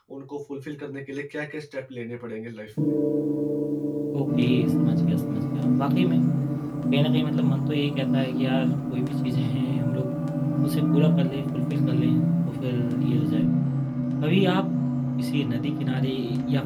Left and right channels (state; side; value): identical; both; correlation 1.00